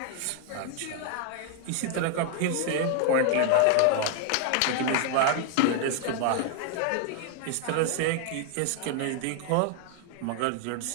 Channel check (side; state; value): both; different; correlation 0.00